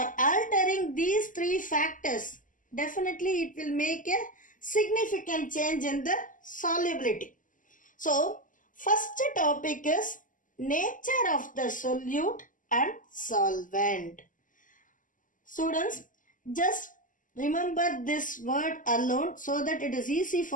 altering these three factors, definitely it will make a significant change in the solubility. So, first topic is nature of the solute and solvent. Students, just remember this word alone so that it is easy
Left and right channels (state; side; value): late; right; 0.38 ms